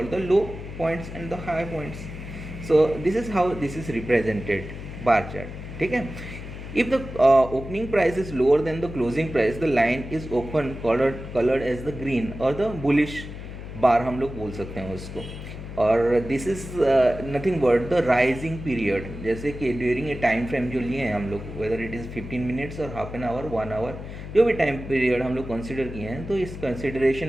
the low points and the high points. So this is how this is represented bar chart, ठीक है। If the opening price is lower than the closing price, the line is open colored as the green or the bullish bar हम लोग बोल सकते हैं उसको। और this is nothing but the rising period, जैसे कि ड्यूरिंग ए टाइम फ्रेम जो लिए हैं हम लोग, वेदर इट इज़ 15 मिनट्स और हाफ एन आवर 1 आवर, जो भी टाइम पीरियड हम लोग कंसिडर किए हैं, तो इस कंसिडरेशन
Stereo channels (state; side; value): noise; left; hum, 10 dB below the sound